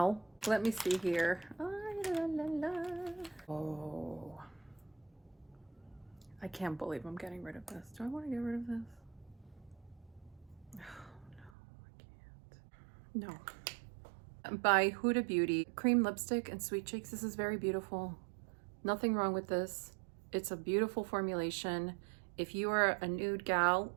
Let me see here. Oh, I can't believe I'm getting rid of this. Do I want to get rid of this? No, by Huda Beauty, cream lipstick and sweet cheeks. This is very beautiful. Nothing wrong with this. It's a beautiful formulation. If you are a nude gal,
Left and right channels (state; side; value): drops out; left; at 11.5 s